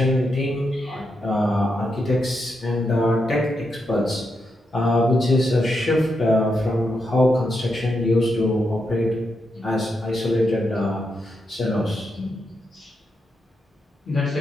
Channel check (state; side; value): normal; both; correlation 0.84